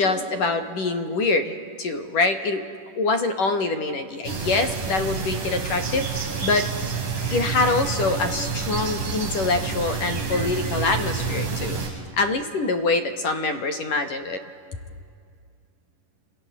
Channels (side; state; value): right; late; 10 ms